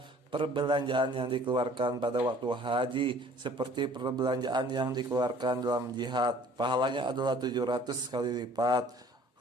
perbelanjaan yang dikeluarkan pada waktu haji seperti perbelanjaan yang dikeluarkan dalam jihad, pahalanya adalah 700 kali lipat.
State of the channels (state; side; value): normal; both; correlation 0.52